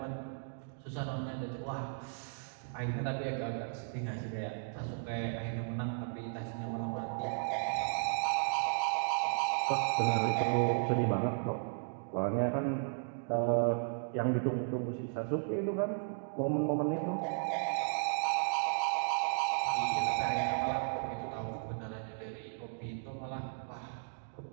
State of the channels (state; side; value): silent; left; digital silence